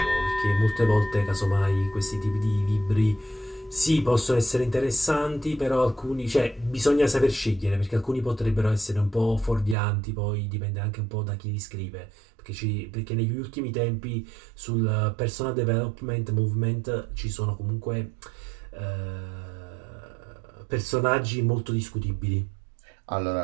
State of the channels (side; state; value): left; drops out; at 9.8 s